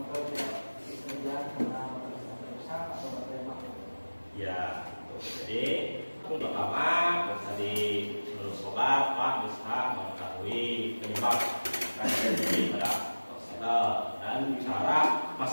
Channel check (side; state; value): both; inverted; correlation -1.00